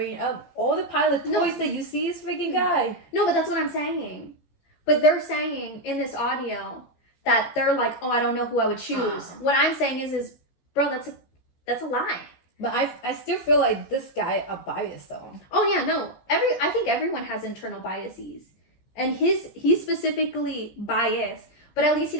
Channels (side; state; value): right; late; 14 ms